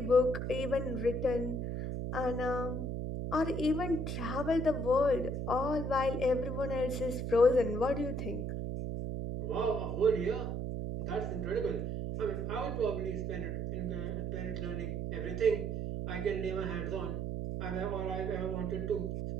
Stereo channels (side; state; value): right; noise; hum, 2 dB below the sound